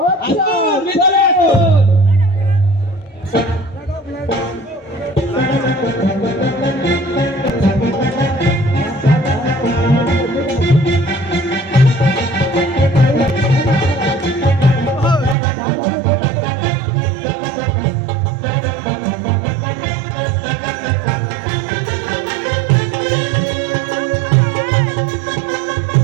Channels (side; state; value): left; drops out; at 15.4 s